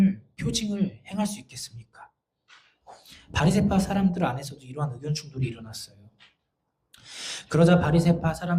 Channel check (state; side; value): identical; both; correlation 1.00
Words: 행할 수 있겠습니까? 바리새파 사람들 안에서도 이러한 의견 충돌이 일어났어요. 그러자 바리새파